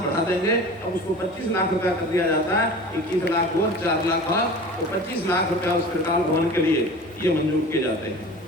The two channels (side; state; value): both; normal; correlation 0.38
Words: बढ़ा देंगे, अब उसको 25 लाख रुपया कर दिया जाता है, 21 लाख और 4 लाख और तो 25 लाख रुपया उस त्रिकाल भवन के लिए ये मंजूर किए जाते हैं।